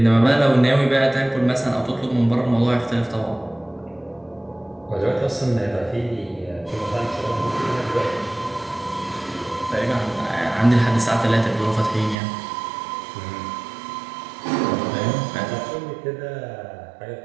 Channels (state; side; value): drops out; left; at 12.2 s